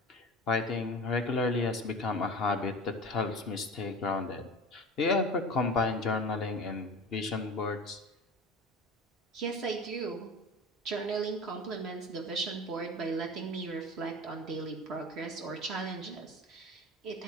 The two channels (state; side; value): normal; both; correlation 0.35